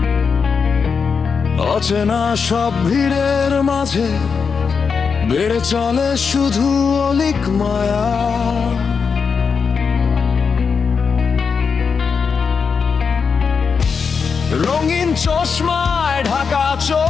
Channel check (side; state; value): right; quieter; 5.7 dB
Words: অচেনা সব ভিড়ের মাঝে বেড়ে চলে শুধু অলিক মায়া। রঙিন চশমায় ঢাকা